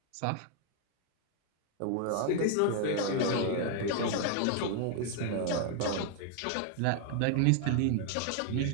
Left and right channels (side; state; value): both; different; correlation 0.00